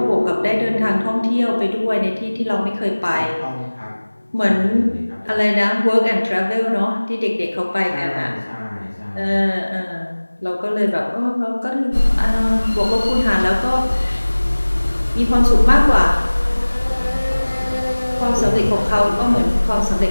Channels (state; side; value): inverted; both; correlation -1.00